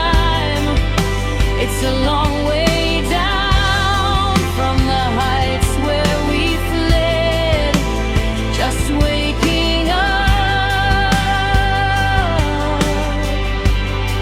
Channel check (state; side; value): identical; both; correlation 1.00